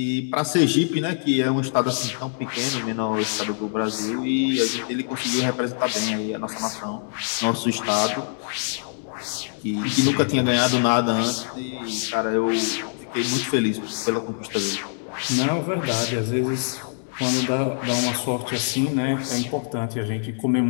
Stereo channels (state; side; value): silent; right; 63 dB below the other